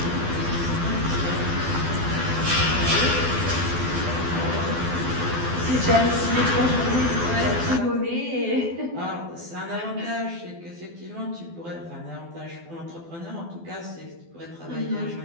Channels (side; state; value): left; late; 12 ms